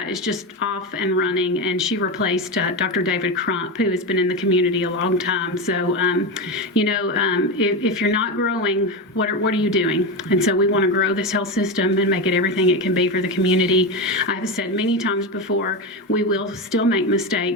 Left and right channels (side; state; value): both; normal; correlation 0.16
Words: just off and running, and she replaced Dr. David Crump, who has been in the community a long time. So, if you're not growing, what are you doing? And so we want to grow this health system and make it everything it can be for the community. I've said many times before, we will still make